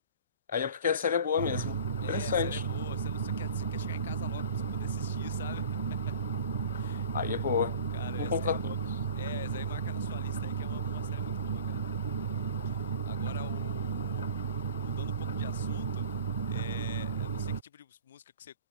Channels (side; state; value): both; inverted; correlation -0.43